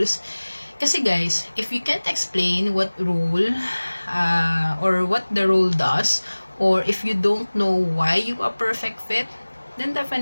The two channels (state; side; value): inverted; both; correlation -1.00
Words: Kasi guys, if you can't explain what role or what the role does, or if you don't know why you are perfect fit, then